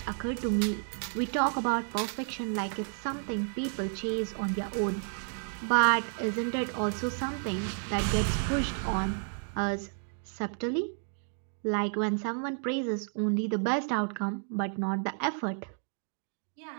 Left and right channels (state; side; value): silent; left; 57 dB below the other